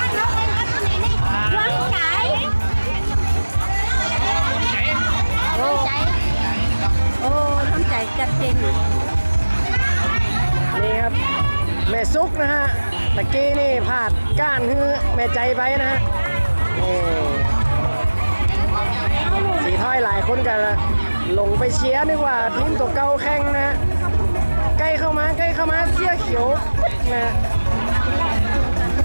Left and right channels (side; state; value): both; inverted; correlation -1.00